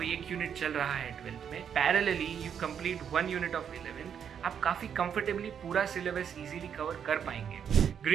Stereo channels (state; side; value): quieter; left; 8.0 dB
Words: एक यूनिट चल रहा है 12th में, parallelly you complete 1 unit of 11th, आप काफी कंफर्टेबली पूरा सिलेबस इजीली कवर कर पाएंगे।